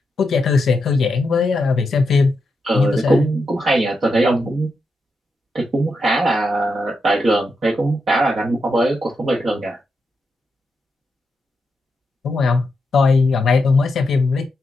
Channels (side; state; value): both; normal; correlation 0.85